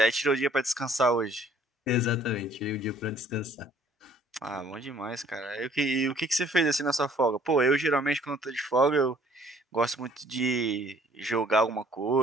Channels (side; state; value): both; normal; correlation 0.58